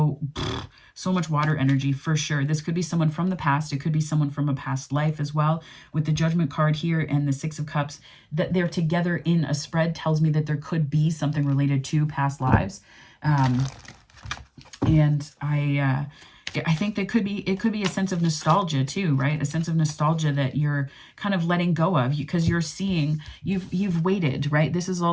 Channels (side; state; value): both; identical; correlation 1.00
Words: much water energy for sure. This could be someone from the past. It could be someone from a past life as well. With the Judgment card here and the 6 of Cups, that they're together in a spread tells me that there could be something related to past lives. And I think it could be a sense of nostalgia too, right? A sense of nostalgia that you're kind of letting go of because you're seeing you've waited, right? This is